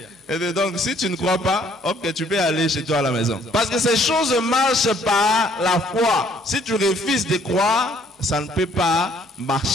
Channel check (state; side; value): normal; both; correlation 0.63